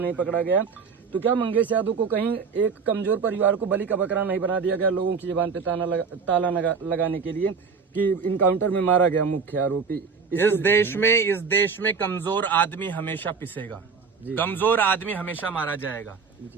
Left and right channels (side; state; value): left; quieter; 5.6 dB